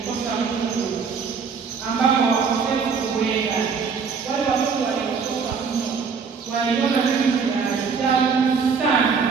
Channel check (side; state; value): left; quieter; 5.7 dB